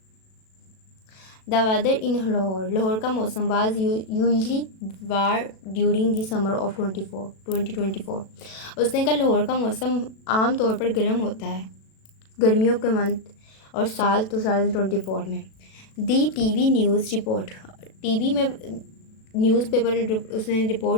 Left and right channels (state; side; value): late; right; 37 ms